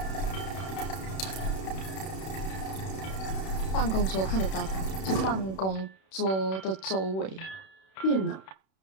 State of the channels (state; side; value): late; right; 31 ms